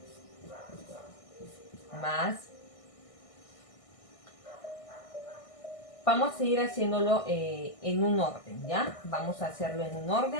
Más. Vamos a ir haciéndolo en un orden, ¿ya? Vamos a hacerlo en un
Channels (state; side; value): late; right; 1.6 ms